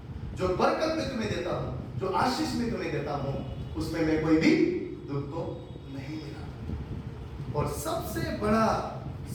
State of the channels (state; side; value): identical; both; correlation 1.00